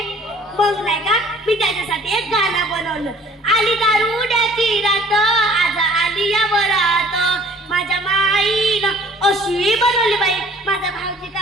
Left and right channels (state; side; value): normal; both; correlation 0.54